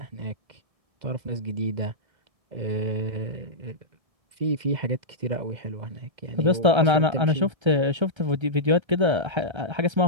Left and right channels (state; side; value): late; left; 1.3 ms